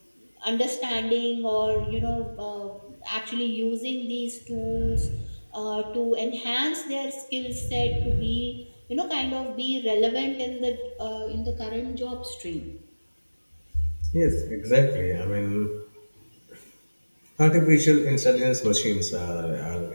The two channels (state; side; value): inverted; both; correlation -1.00